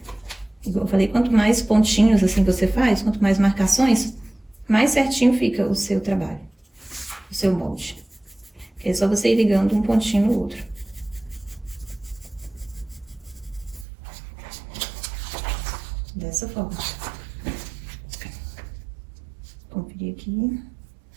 Igual eu falei, quanto mais pontinhos assim você faz, quanto mais marcações, mais certinho fica o seu trabalho, o seu molde. É só você ir ligando um pontinho no outro. Dessa forma. Conferir aqui.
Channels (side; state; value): left; drops out; at 13.9 s